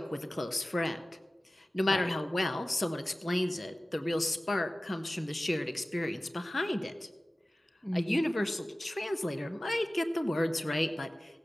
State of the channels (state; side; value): normal; both; correlation 0.97